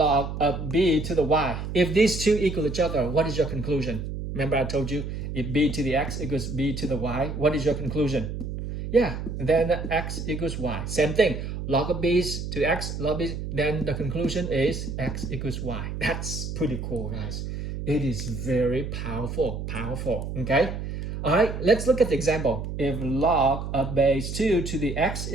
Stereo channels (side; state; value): right; noise; hum, 6 dB below the sound